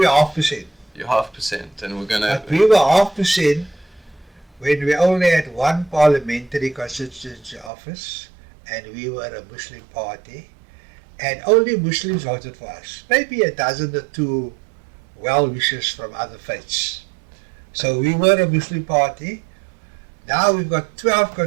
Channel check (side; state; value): left; drops out; at 7.7 s